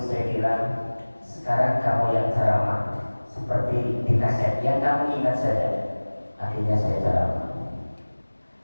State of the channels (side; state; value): both; inverted; correlation -1.00